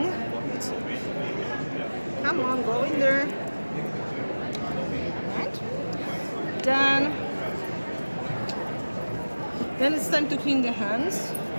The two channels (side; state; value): both; inverted; correlation -1.00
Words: Come on, go in there. Right. Then it's time to clean the hands